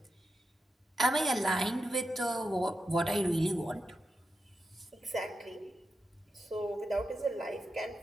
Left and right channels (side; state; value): both; normal; correlation 0.88